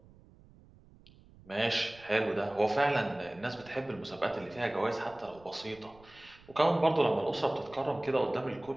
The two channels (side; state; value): right; noise; rumble, 25 dB below the sound